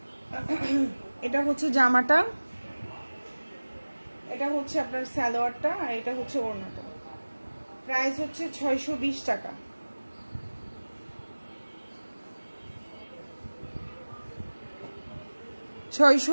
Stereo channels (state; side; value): inverted; both; correlation -1.00